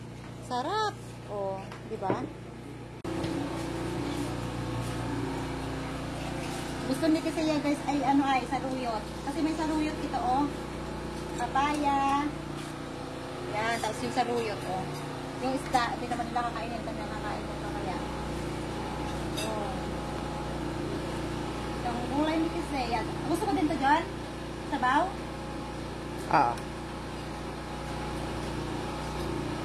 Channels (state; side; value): identical; both; correlation 1.00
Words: Sarap. O, di ba? Gusto ni kasi yan guys ay ano ay saruyot. Kasi may saruyot ito oh. Papaya. Yan, tapos yung saruyot oh. Yung isda, hindi naman nila kakainin. Kami nakakain ko kaya. Oh. Yung gulay ni kasi yan. Gusto mo din to John? Sabaw? Ah.